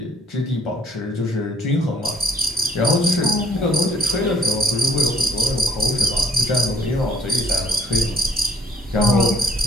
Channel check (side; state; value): both; normal; correlation 0.65